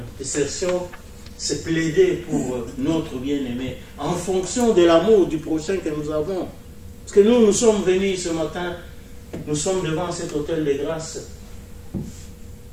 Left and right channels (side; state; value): both; identical; correlation 1.00